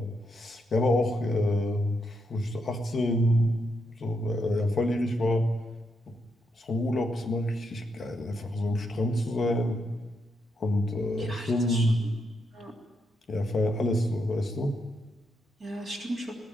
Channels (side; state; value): both; normal; correlation 0.81